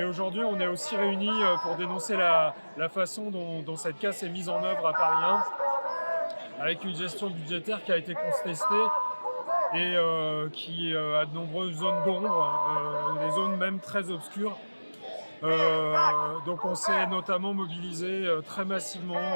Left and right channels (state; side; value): inverted; both; correlation -1.00